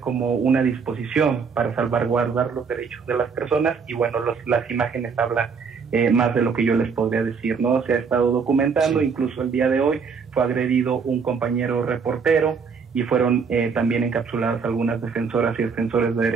una disposición para salvaguardar los derechos de las personas y bueno, las imágenes hablan más de lo que yo les podría decir, ¿no? Se ha estado documentando, sí. Incluso el día de hoy fue agredido un compañero reportero y fueron también encapsuladas algunas defensoras y defensores de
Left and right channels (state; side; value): quieter; left; 5.6 dB